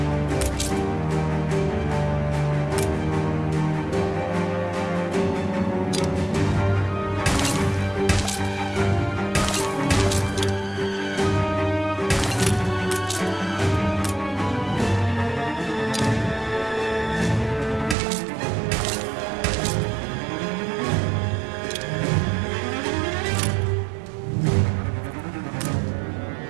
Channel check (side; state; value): left; drops out; at 17.9 s